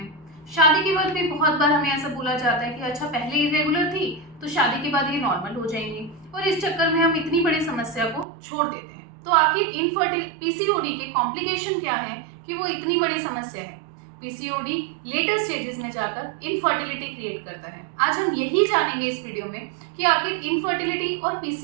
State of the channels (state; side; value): drops out; left; at 8.2 s